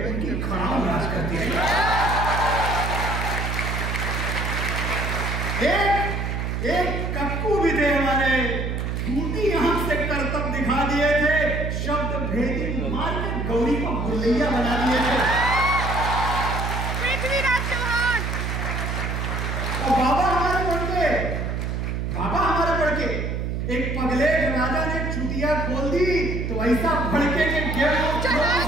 उनकी खड़ाम राज करती रही। एक कक्कू भी थे हमारे, झूठी आंख से करतब दिखा दिए थे, शब्द भेदी मार के गौरी को गुल्लैया बना दिए थे। पृथ्वीराज चौहान। और बाबा हमारे बढ़के एक पगलेट राजा ने चुटिया खोल दी तो ऐसा भड़के के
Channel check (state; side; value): noise; right; hum, 2 dB below the sound